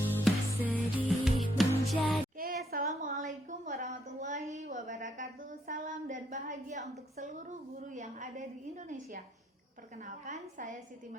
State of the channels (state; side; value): normal; both; correlation 0.73